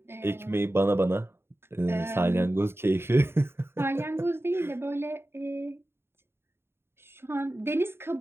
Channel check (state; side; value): late; left; 0.11 ms